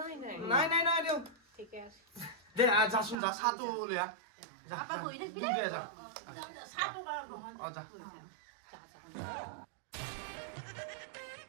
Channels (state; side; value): drops out; left; at 3.2 s